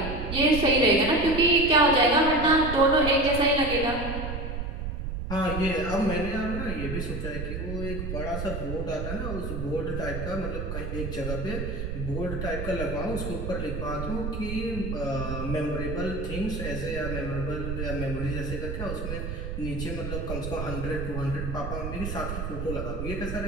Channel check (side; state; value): right; noise; rumble, 5 dB below the sound